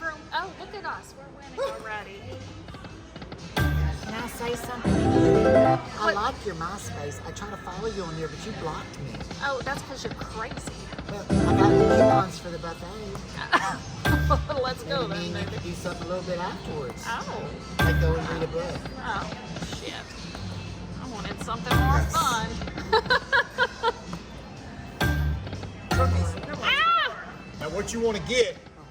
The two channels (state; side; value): identical; both; correlation 1.00